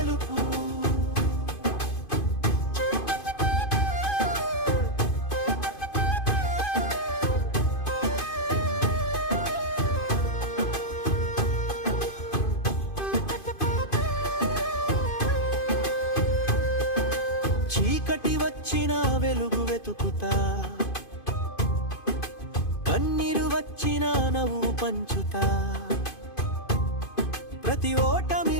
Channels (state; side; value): late; right; 2.5 ms